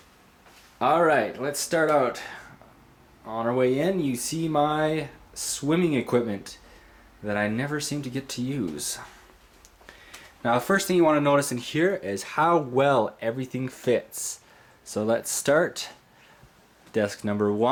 Alright, let's start out. On our way in, you see my swimming equipment that I never seem to get to use. Now, the first thing you want to notice in here is how well everything fits. So let's start. Desk number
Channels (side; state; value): both; identical; correlation 1.00